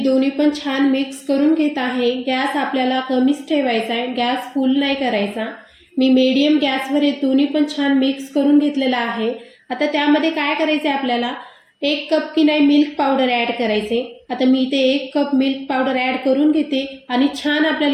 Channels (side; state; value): both; identical; correlation 1.00